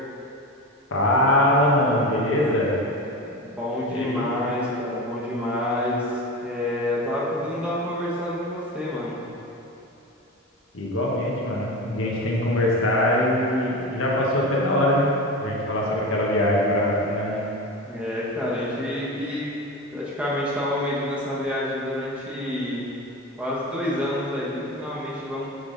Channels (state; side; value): normal; both; correlation 0.26